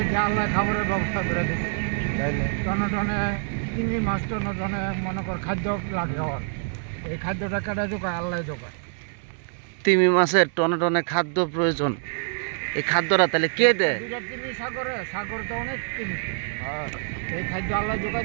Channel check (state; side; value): silent; left; digital silence